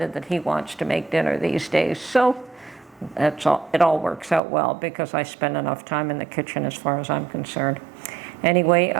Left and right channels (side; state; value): left; drops out; at 4.4 s